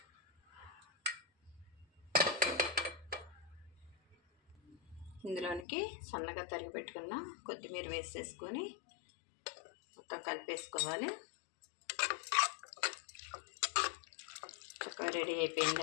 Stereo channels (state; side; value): drops out; right; at 5.7 s